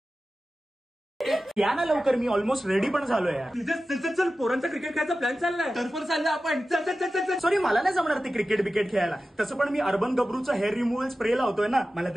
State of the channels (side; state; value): both; normal; correlation 0.94